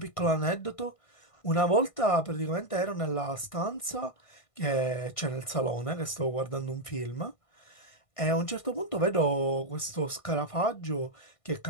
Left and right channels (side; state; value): right; late; 1.6 ms